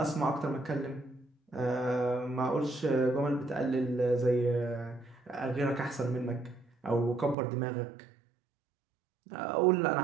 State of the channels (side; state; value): left; drops out; at 7.4 s